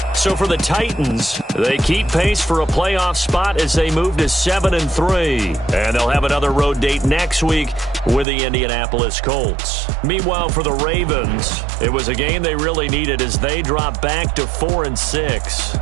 So for the Titans, they keep pace for a playoff spot as they move to 7-3. And they'll have another road date next week with the Indianapolis Colts. Meanwhile, for the Ravens, it was a game they really needed as they drop back to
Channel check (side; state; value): left; drops out; at 8.2 s